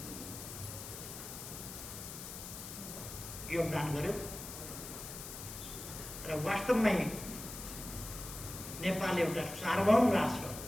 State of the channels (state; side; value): noise; left; hiss, 10 dB below the sound